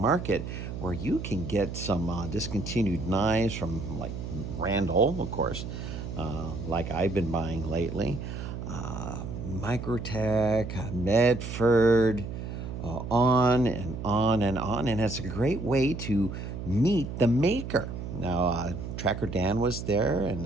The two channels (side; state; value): right; noise; hum, 7 dB below the sound